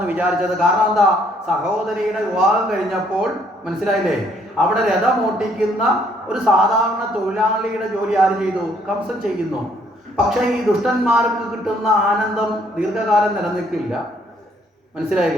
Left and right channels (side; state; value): both; normal; correlation 0.66